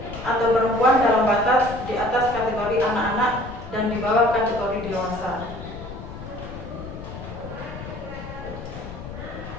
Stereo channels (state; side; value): noise; left; rumble, 11 dB below the sound